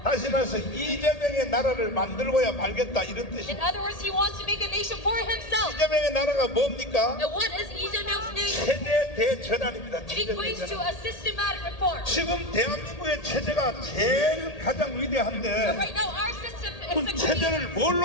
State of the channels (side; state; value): right; late; 1.8 ms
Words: 다시 말해서 이재명의 나라를 만들고야 말겠다 이런 In 뜻입니다. other words, he wants to make a nation for himself. 이재명의 나라가 뭡니까? And what is Lee Jae-myung's nation? 체제 대전환입니다. It 체제 equates to 대전환. a systematic reform. 지금 대한민국의 체제가 제일 가장 So 위대한데 right now, our system is 그 succeeding. 체제를